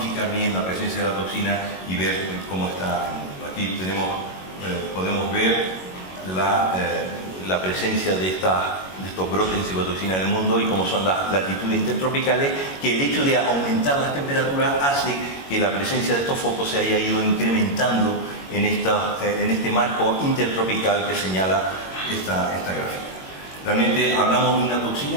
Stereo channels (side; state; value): right; late; 21 ms